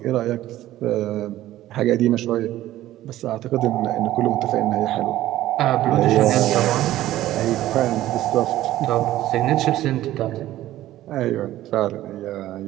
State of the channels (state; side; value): quieter; left; 14.5 dB